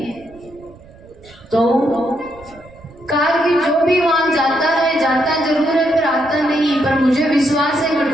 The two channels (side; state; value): right; noise; rumble, 24 dB below the sound